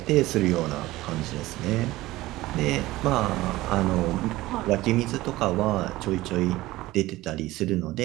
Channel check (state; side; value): quieter; left; 17.9 dB